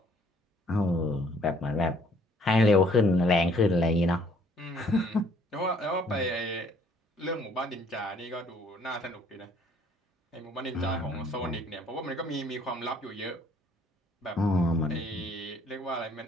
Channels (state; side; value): normal; both; correlation 0.61